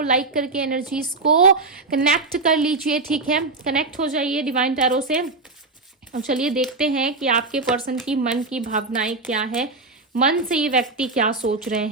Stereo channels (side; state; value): left; quieter; 3.6 dB